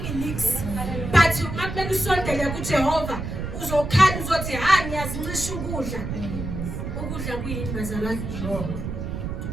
nix. But makumele usondele kuJehova uzokhala uzothi ngiyazincisha ukudla. Ukudla kuyini bazalwane?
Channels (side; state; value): right; noise; rumble, 5 dB below the sound